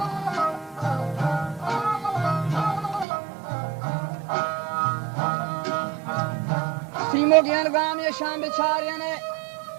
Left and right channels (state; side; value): drops out; left; at 3.1 s